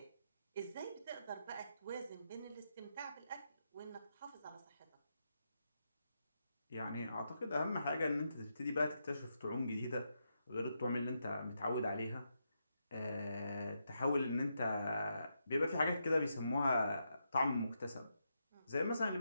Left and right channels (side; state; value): both; inverted; correlation -0.83